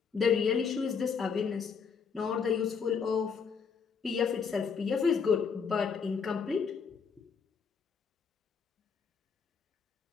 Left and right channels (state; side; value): quieter; right; 6.0 dB